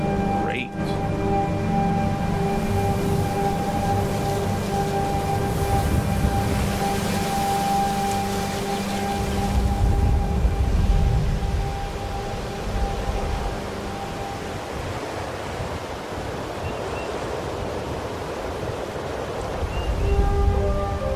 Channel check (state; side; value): identical; both; correlation 1.00